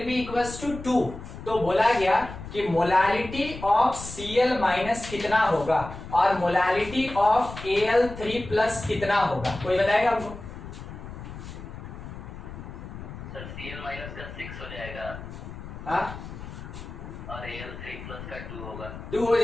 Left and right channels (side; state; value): left; noise; rumble, 12 dB below the sound